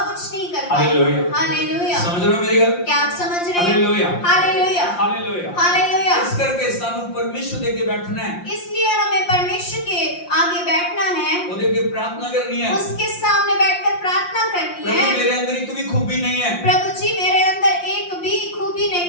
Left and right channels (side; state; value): right; late; 5.7 ms